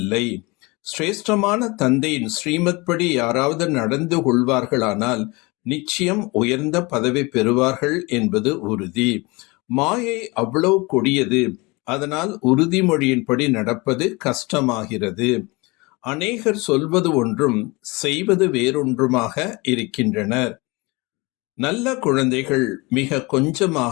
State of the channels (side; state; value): right; quieter; 25.3 dB